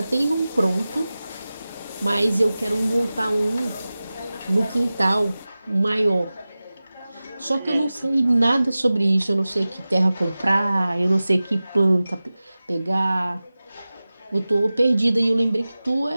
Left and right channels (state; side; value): inverted; both; correlation -0.97